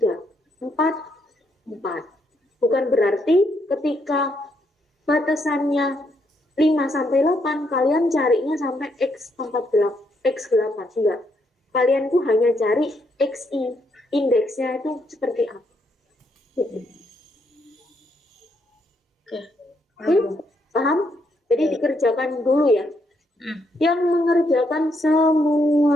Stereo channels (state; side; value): normal; both; correlation 0.75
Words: 4. Bukan berarti ketika batasannya 5 sampai 8, kalian carinya sampai X8. Enggak. Kalian tuh hanya cari XI. Indeksnya itu seperti apa. Paham? Jadi dikerjakan dulu ya. Yang mengerjakan